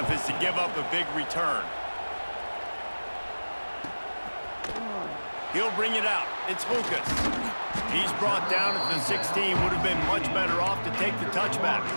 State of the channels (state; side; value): inverted; both; correlation -1.00